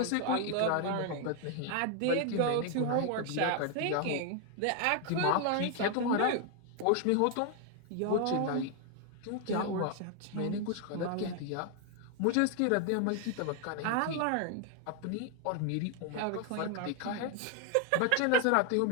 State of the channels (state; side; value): different; both; correlation 0.00